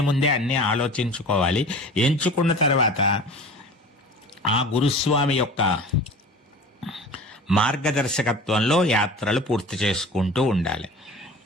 ముందే అన్నీ ఆలోచించుకోవాలి. ఎంచుకున్న తర్వాత ఆ గురుస్వామి యొక్క మార్గదర్శకత్వంలో యాత్రలు పూర్తి చేసుకుంటూ ఉండాలి.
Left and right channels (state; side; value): normal; both; correlation 0.39